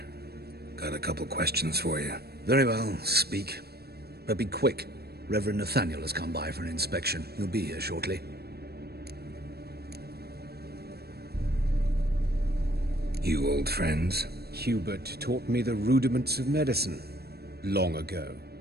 Got a couple questions for you. Very well, speak. But be quick. Reverend Nathaniel has come by for an inspection. He'll be here shortly. You old friends? Hubert taught me the rudiments of medicine. Long ago.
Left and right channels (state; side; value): late; left; 0.46 ms